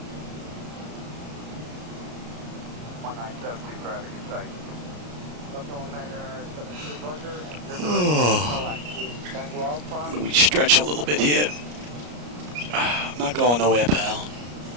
Traffic in sight. Oh, we stretch a little bit here. I'm not going nowhere, pal.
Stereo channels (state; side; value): late; left; 33 ms